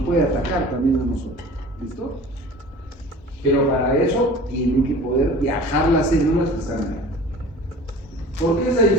puede atacar también a nosotros. ¿Listo? Pero para eso tienen que poder viajar las células que están ahí. ¿Por qué esa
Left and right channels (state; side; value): normal; both; correlation 0.42